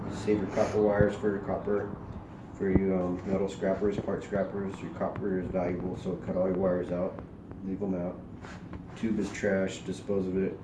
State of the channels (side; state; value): both; identical; correlation 1.00